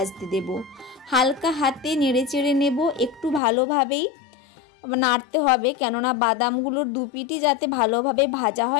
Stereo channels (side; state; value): right; drops out; at 3.4 s